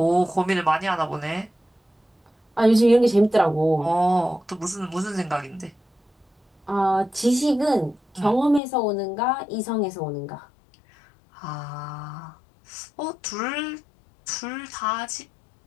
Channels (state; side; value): drops out; right; at 8.6 s